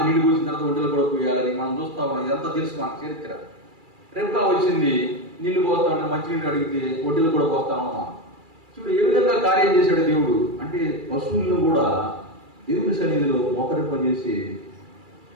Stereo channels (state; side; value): late; left; 2.3 ms